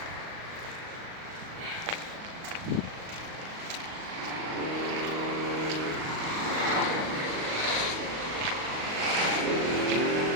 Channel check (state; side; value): late; left; 38 ms